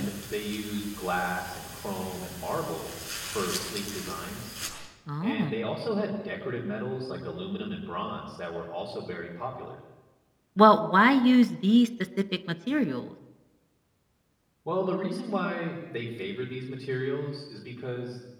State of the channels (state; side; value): identical; both; correlation 1.00